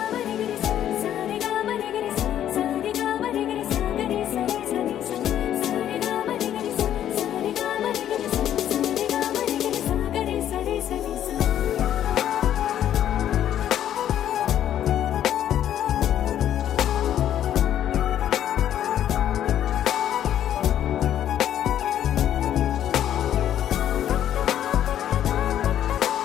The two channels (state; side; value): quieter; right; 10.9 dB